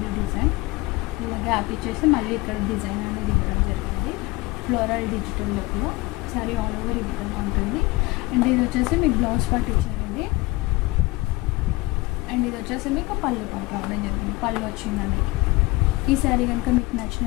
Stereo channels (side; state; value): right; quieter; 22.1 dB